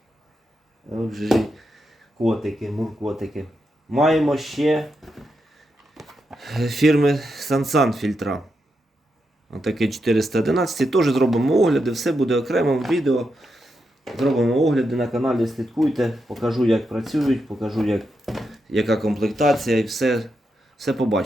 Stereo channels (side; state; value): both; normal; correlation 0.85